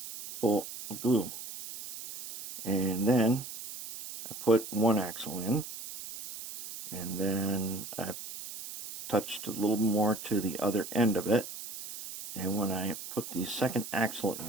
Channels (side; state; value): right; noise; hiss, 10 dB below the sound